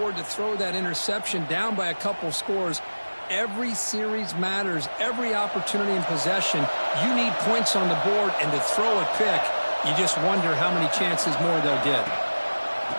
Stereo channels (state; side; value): inverted; both; correlation -1.00